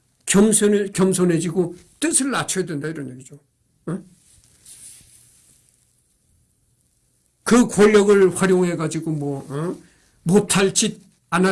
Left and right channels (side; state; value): both; identical; correlation 1.00